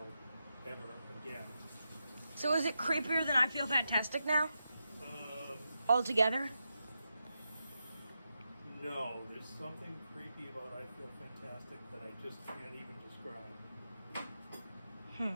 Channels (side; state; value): both; inverted; correlation -0.87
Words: ever again. So is it creepier than I Feel Fantastic now? Um, Altogether? no, there's something creepy about I Feel Fantastic that I just can't even describe.